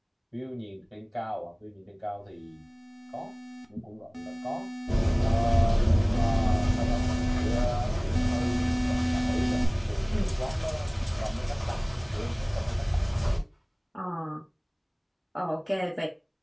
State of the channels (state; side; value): identical; both; correlation 1.00